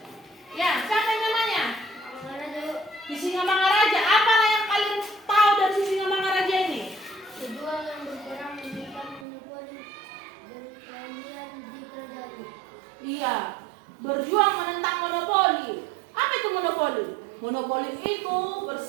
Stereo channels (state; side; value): drops out; left; at 9.2 s